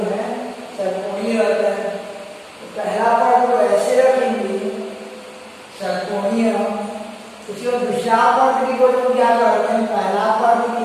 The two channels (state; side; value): identical; both; correlation 1.00